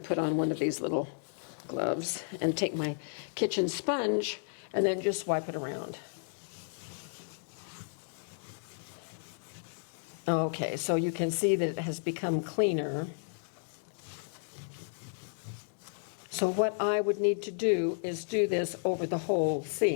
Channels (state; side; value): silent; right; digital silence